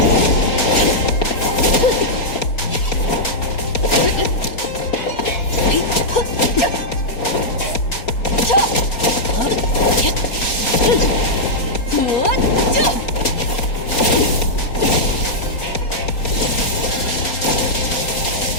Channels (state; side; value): late; right; 4.3 ms